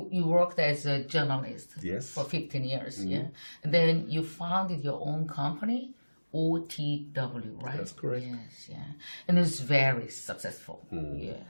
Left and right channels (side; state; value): both; inverted; correlation -1.00